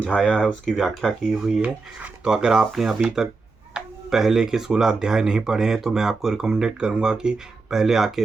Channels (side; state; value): left; quieter; 4.0 dB